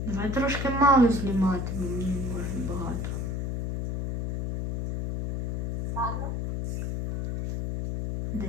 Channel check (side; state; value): left; noise; hum, 2 dB below the sound